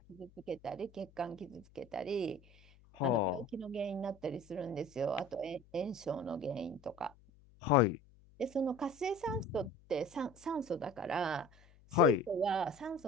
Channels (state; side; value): noise; left; hum, 26 dB below the sound